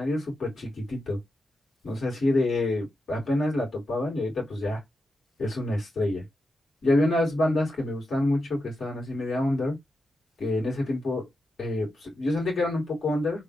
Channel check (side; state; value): both; normal; correlation 0.88